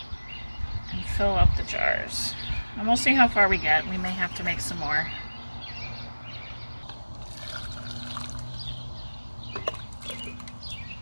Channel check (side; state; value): both; inverted; correlation -1.00